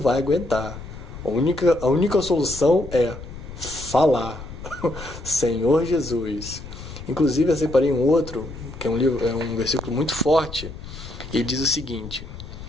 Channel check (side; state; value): left; noise; rumble, 12 dB below the sound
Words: aguentar. A única solução é falar. Senhor Jesus. Inclusive eu separei um outro, que é um versículo muito forte. Ele diz o seguinte: